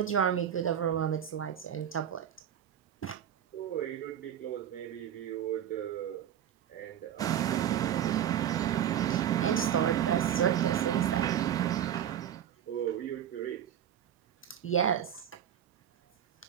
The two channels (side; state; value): left; quieter; 9.9 dB